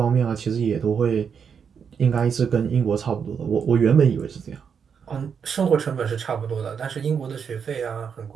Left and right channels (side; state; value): left; quieter; 6.8 dB